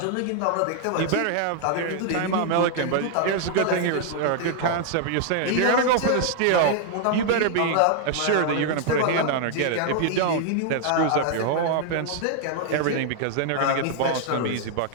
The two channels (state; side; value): different; both; correlation 0.00